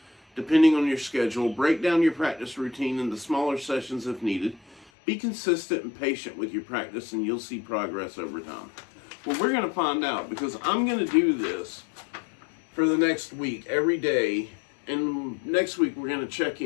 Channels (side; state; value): right; drops out; at 4.9 s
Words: depending on your schedule. Break down your practice routine into smaller sessions if needed. Be consistent and patient with your practice, and you'll see progress over time. Well, we're going to find out, because I'm going to do this for the next week, every day. And next week, we're going to check